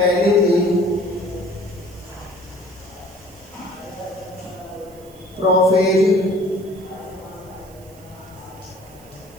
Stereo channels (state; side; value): noise; right; hiss, 25 dB below the sound